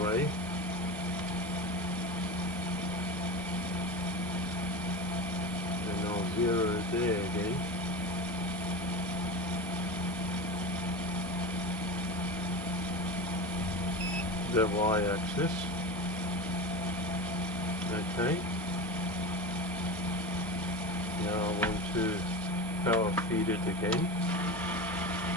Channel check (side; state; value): both; normal; correlation 0.26